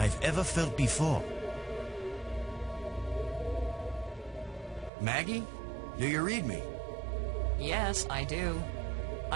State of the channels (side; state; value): left; drops out; at 4.9 s